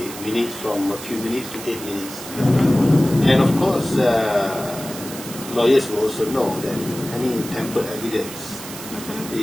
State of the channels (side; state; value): right; noise; hiss, 12 dB below the sound